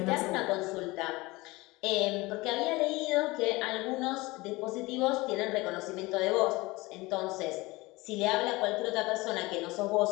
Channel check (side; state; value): right; quieter; 21.9 dB